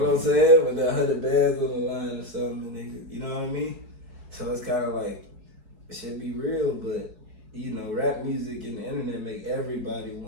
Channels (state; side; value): late; left; 4.7 ms